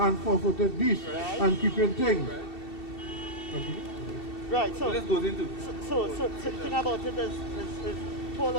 four-footed beasts and creeping things. Right, so let's go into. So the thing about it is Paul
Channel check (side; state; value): right; late; 2.7 ms